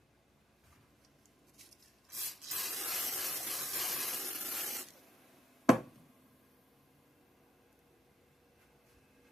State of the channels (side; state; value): both; normal; correlation 0.74